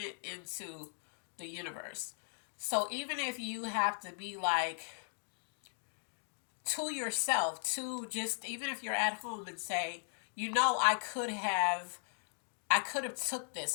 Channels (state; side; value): silent; right; digital silence